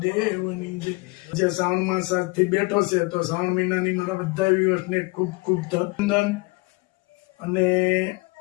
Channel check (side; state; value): right; quieter; 26.4 dB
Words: જે શ્રાવણ માસ આજથી બેઠો છે, તો શ્રાવણ મહિનાની મારા બધા વ્યુઅર્સને ખૂબ ખૂબ અભિનંદન. અને